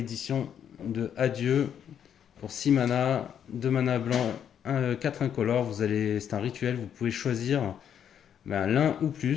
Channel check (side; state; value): right; quieter; 8.8 dB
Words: de Adieu pour 6 mana, 2 mana blanc, 4 incolores. C'est un rituel, vous pouvez choisir l'un ou